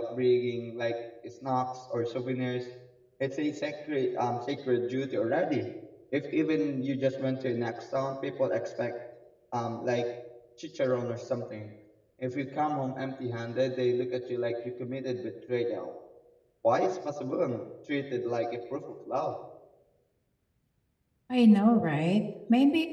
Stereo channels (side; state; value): both; identical; correlation 1.00